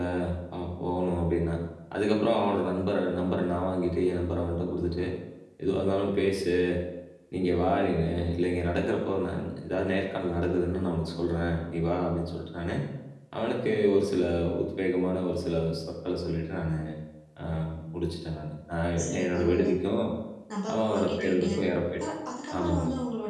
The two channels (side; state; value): both; identical; correlation 1.00